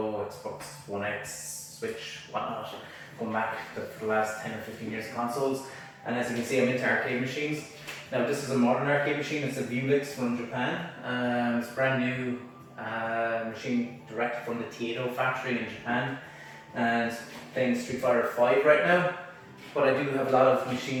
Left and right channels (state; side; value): identical; both; correlation 1.00